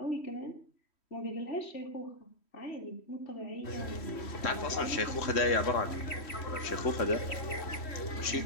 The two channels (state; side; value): late; right; 3.1 ms